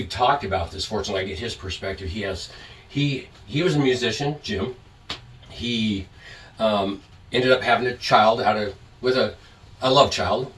talked about this. Fortunately, I get his perspective. He was a musician, Jim. He ended up having a child with a love child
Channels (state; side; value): identical; both; correlation 1.00